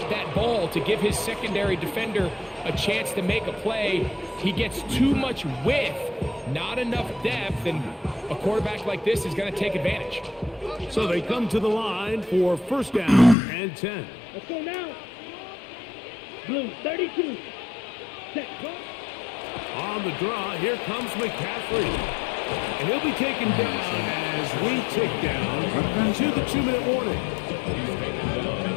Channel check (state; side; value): drops out; right; at 13.4 s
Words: that ball to give his secondary defender a chance to make a play. He gets too much width, not enough depth, and a quarterback like this is going to take advantage. So they come to the line for 1st down and 10. Let's go now. Blue, 32. Set, punt. On the draw, here comes McCaffrey. And he'll be taken down as we tick down to the 2-minute warning. He's taken down